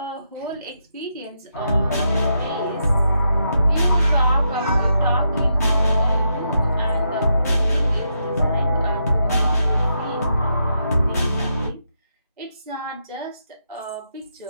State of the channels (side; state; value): both; inverted; correlation -0.81